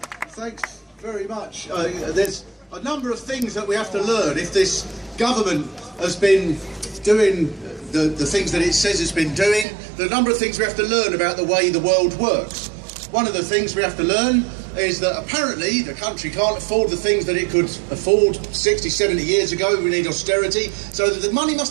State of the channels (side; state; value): left; drops out; at 9.7 s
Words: Thanks very much. There's a number of things that we have to learn if this government has been doing the things that it says it's been doing. There are a number of things we have to learn about the way the world works. One of the things we have to learn is that apparently the country can't afford the things that it could afford 60, 70 years ago. We need austerity, so that the money